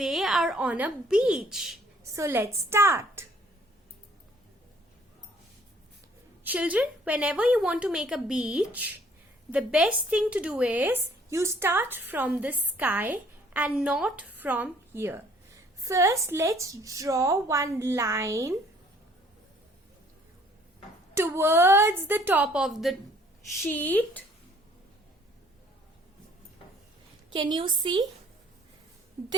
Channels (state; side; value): normal; both; correlation 0.59